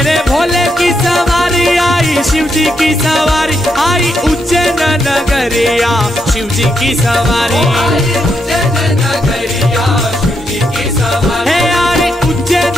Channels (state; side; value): normal; both; correlation 0.80